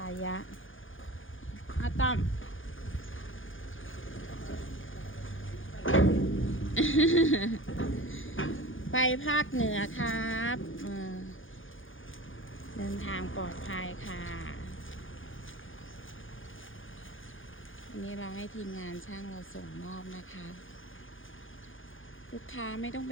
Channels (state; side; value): late; right; 0.58 ms